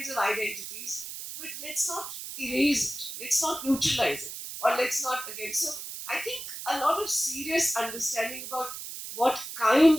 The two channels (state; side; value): noise; right; hiss, 9 dB below the sound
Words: of identities, but let's not erase it, let's not neutralize it, or let's not again. So I think a lot of serious understanding about what kind